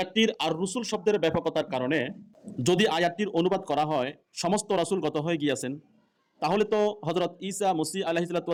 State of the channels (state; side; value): identical; both; correlation 1.00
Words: আর রসুল শব্দের ব্যাপকতার কারণে যদি আয়াতটির অনুবাদ করা হয় সমস্ত রাসূল গত হয়ে গিয়াছেন, তাহলে তো হযরত ঈসা মসীহ